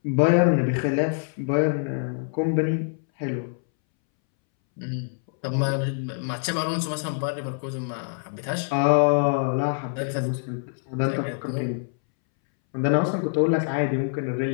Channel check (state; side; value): silent; right; 62 dB below the other